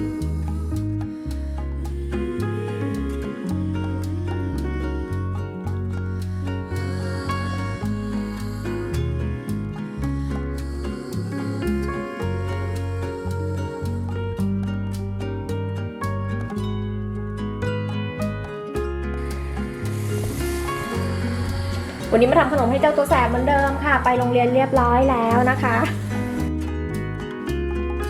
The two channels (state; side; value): identical; both; correlation 1.00